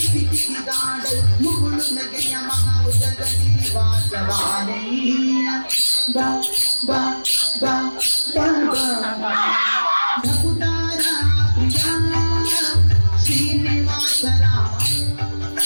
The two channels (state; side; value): inverted; both; correlation -1.00